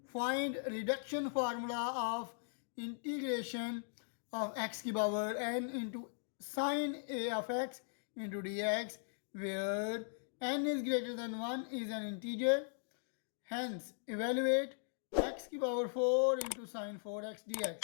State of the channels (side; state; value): right; silent; digital silence